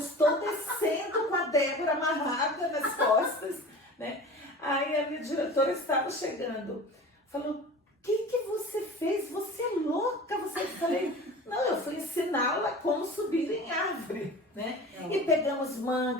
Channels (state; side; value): normal; both; correlation 0.38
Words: descendo com a Débora amarrada nas costas, né? Aí a minha diretora estava chegando, falou, o que você fez? Você é louca? Eu falei, não, eu fui ensiná-la como subir em árvore, né? E pegamos